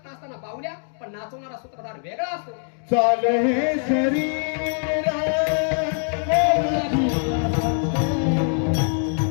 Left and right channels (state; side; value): silent; right; 57 dB below the other